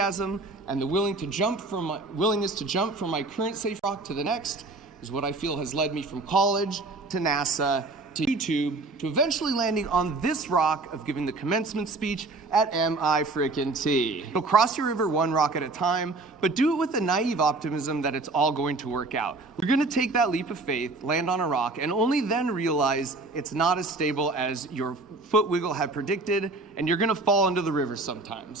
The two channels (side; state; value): left; quieter; 3.3 dB